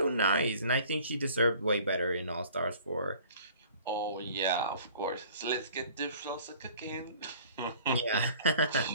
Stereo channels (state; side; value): inverted; both; correlation -0.50